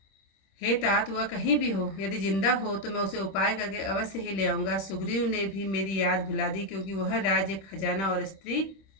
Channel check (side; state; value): right; late; 26 ms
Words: हे तात, वह कहीं भी हो, यदि जिंदा हो तो मैं उसे उपाय करके अवश्य ही ले आऊंगा। सुग्रीव ने भी मेरी याद भुला दी, क्योंकि वह राज्य, खजाना और स्त्री